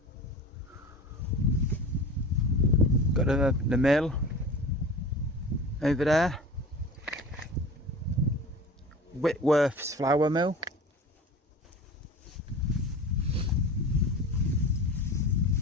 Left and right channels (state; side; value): normal; both; correlation 0.36